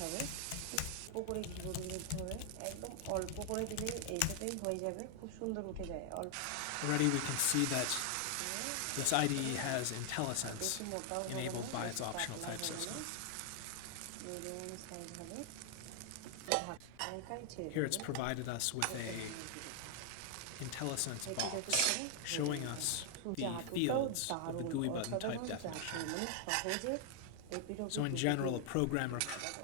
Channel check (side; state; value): both; different; correlation 0.00